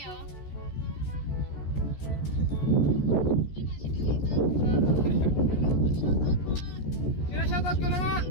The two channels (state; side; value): late; right; 14 ms